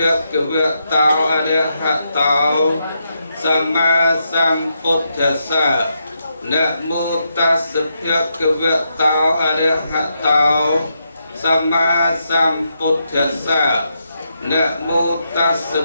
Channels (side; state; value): both; inverted; correlation -0.82